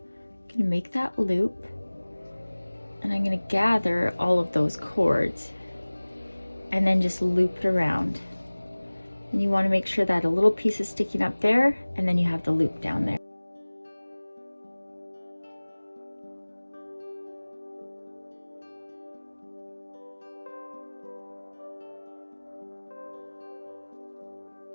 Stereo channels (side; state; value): both; inverted; correlation -1.00